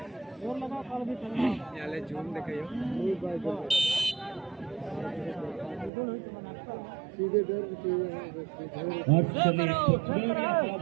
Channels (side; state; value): left; drops out; at 5.9 s